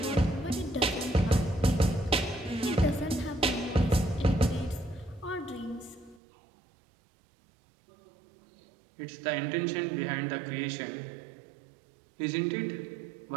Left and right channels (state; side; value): drops out; left; at 6.2 s